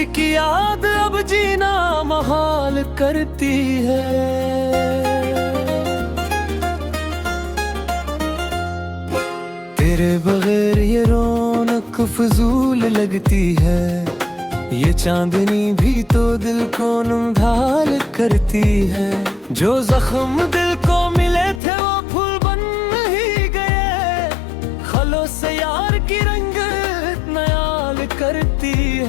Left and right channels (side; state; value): right; drops out; at 21.6 s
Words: की याद अब जीना महाल करती है। तेरे बगैर ये रौनक फजूल लगती है, ये चांदनी भी तो दिल को नमढाल करती है। जो जख्म दिल को मिले थे वो फूल बन ही गए, खलों से यार की रंगत नयाल करती